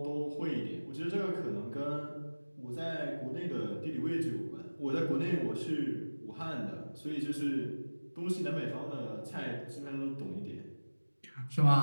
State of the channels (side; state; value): both; inverted; correlation -1.00